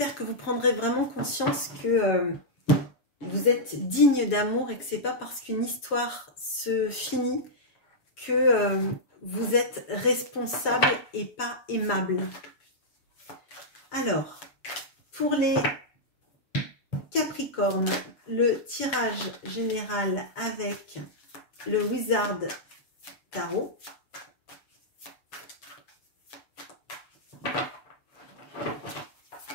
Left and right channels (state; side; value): late; right; 7.2 ms